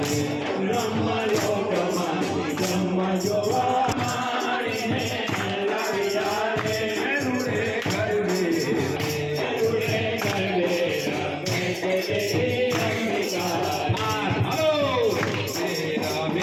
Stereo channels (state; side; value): identical; both; correlation 1.00